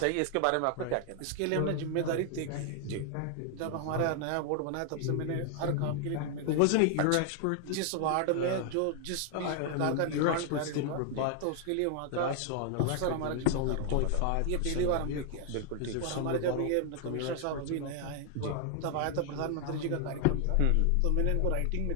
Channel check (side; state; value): both; different; correlation 0.00